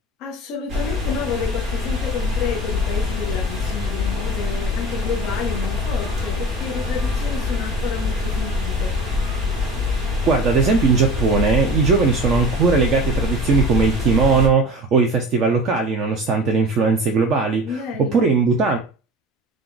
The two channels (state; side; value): normal; both; correlation 0.37